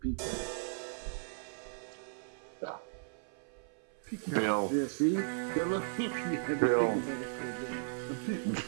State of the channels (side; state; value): left; silent; 54 dB below the other